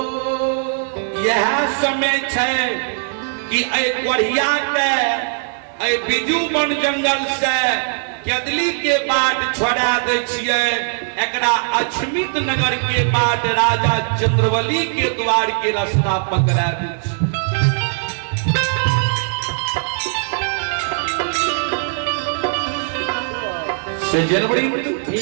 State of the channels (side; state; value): left; silent; digital silence